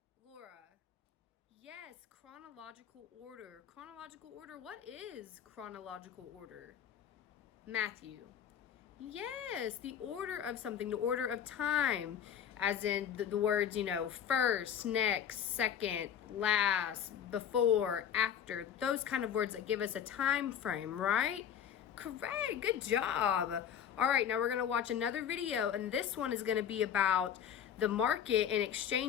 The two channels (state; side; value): quieter; right; 8.9 dB